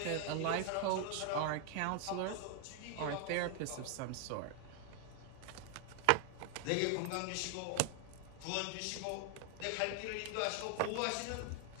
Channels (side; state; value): both; different; correlation 0.00